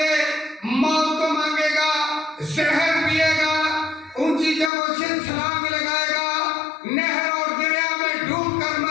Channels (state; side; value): drops out; right; at 4.7 s